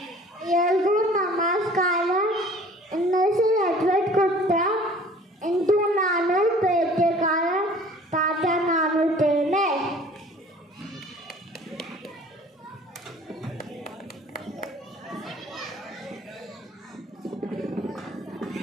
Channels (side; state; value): both; normal; correlation 0.49